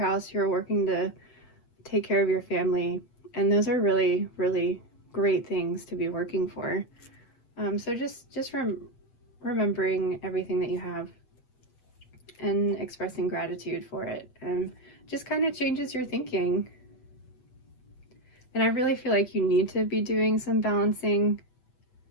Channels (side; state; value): right; late; 8.2 ms